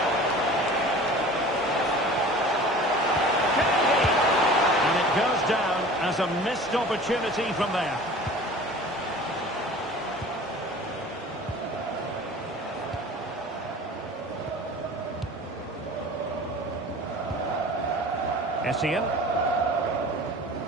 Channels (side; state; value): both; normal; correlation 0.42